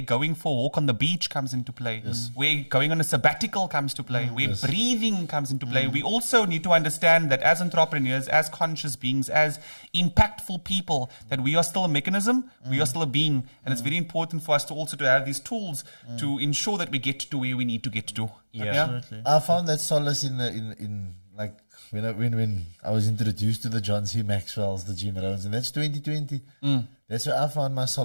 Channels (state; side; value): inverted; both; correlation -1.00